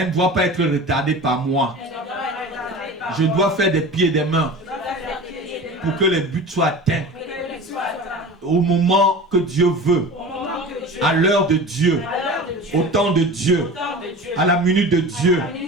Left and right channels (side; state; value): both; normal; correlation 0.35